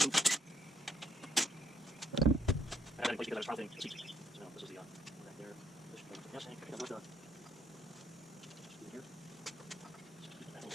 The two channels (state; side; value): normal; both; correlation 0.71